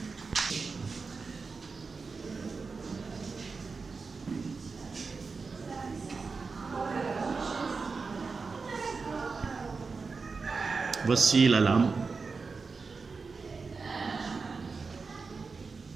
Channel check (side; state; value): left; quieter; 4.6 dB